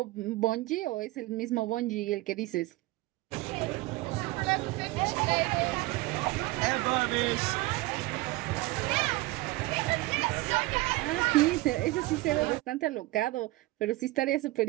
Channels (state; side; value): quieter; left; 19.9 dB